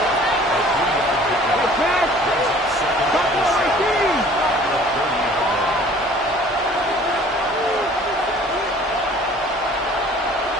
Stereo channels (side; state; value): both; normal; correlation 0.51